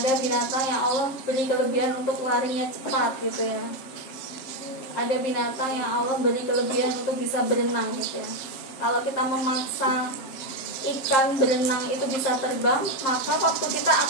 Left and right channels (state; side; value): late; right; 7.6 ms